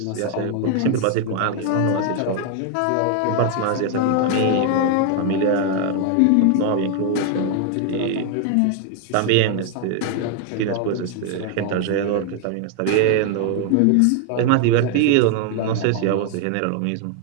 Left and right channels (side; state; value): both; different; correlation 0.00